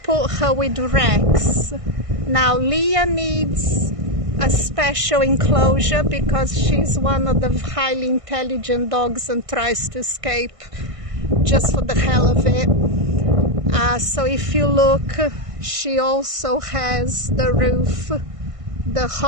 put her with Rex. Now LIA needs a special enclosure because she's one of the highly intelligent dogs and tries to escape just for the hell of it. So if you look, she also has the roof, the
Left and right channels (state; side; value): late; left; 1.5 ms